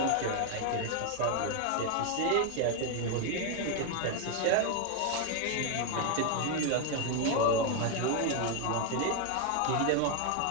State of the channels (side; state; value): both; different; correlation 0.01